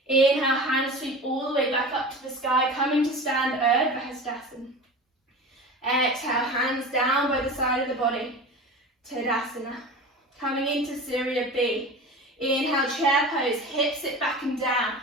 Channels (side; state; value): both; normal; correlation 0.34